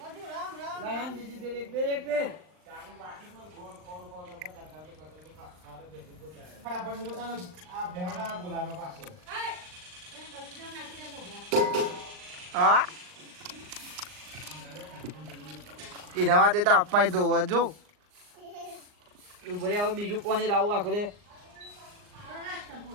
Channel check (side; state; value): left; late; 39 ms